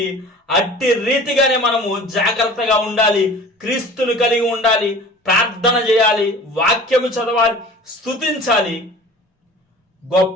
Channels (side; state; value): both; normal; correlation 0.43